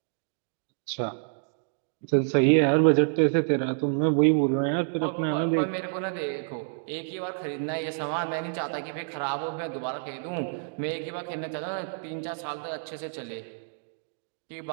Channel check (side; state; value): left; silent; digital silence